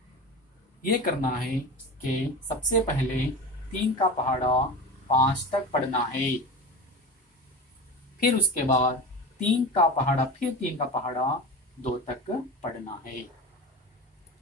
यह करना है कि सबसे पहले 3 का पहाड़ा 5 तक पढ़ना है, फिर उसके बाद 3 का पहाड़ा, फिर 3 का पहाड़ा 2 तक पढ़ना है।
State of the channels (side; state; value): both; normal; correlation 0.29